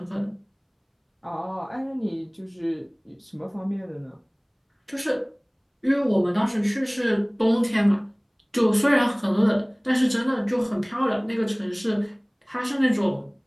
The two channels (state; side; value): identical; both; correlation 1.00